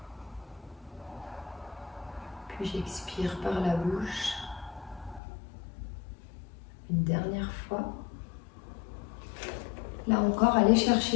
Puis j'expire par la bouche. Une dernière fois. Là encore, allez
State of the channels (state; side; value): drops out; right; at 5.2 s